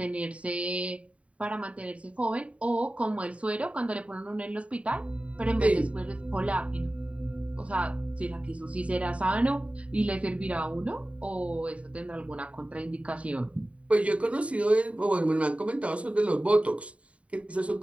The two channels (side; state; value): left; late; 0.064 ms